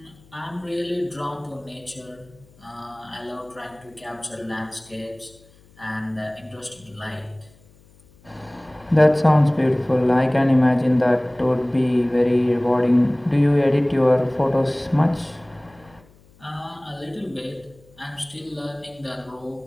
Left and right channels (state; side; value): noise; left; hum, 28 dB below the sound